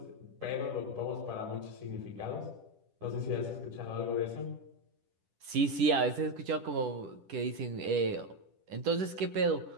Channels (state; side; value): late; left; 10 ms